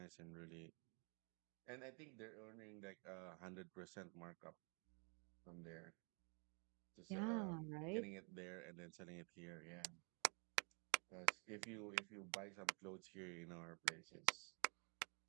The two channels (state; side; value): quieter; left; 36.9 dB